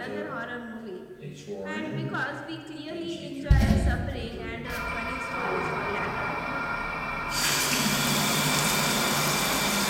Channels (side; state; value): both; identical; correlation 1.00